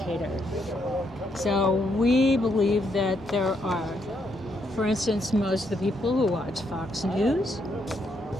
So we believe that there are, for instance, most of the people who watch Fox News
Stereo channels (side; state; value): both; normal; correlation 0.76